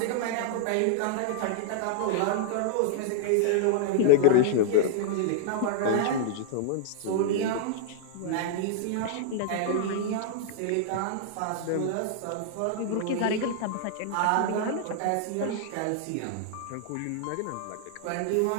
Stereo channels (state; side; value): different; both; correlation -0.01